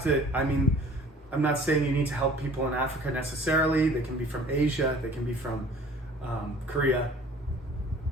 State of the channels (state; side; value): normal; both; correlation 0.50